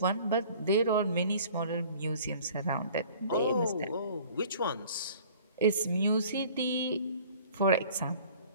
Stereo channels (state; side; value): inverted; both; correlation -0.49